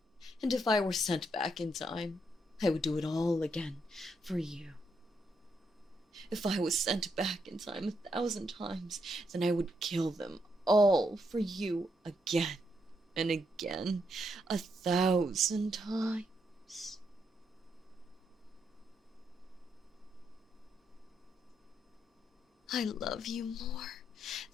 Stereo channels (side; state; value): both; normal; correlation 0.78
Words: And if I were sent back in time, I would do it all again for you. If I was sent back in time 1,000 times, then I would kill them all for you again and again, 1,000 times. I love you more